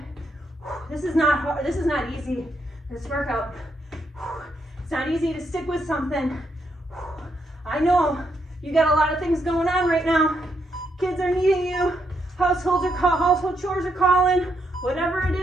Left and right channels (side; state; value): both; normal; correlation 0.78